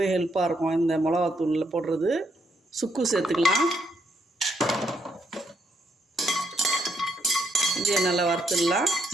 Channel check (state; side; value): normal; both; correlation 0.75